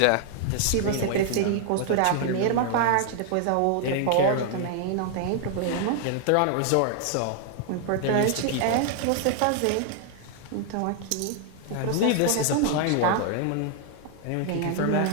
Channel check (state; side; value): different; both; correlation 0.00